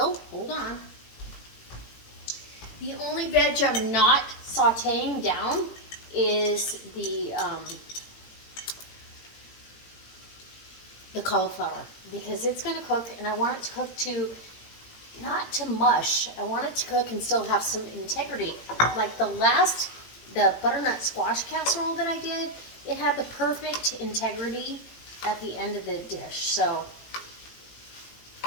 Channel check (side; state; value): right; late; 18 ms